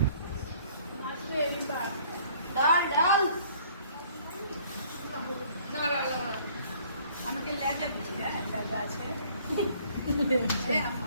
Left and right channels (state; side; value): inverted; both; correlation -0.57